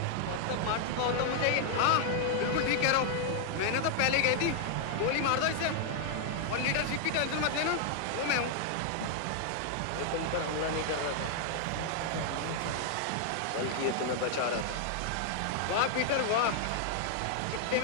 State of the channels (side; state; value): both; different; correlation 0.00